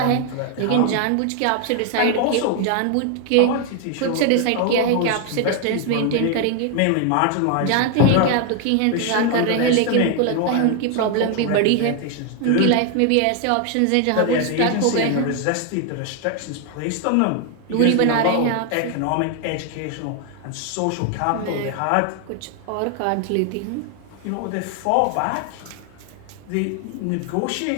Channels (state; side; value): different; both; correlation 0.00